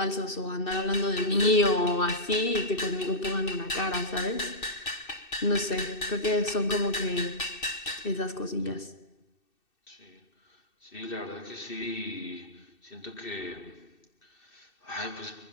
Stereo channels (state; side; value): late; right; 2.6 ms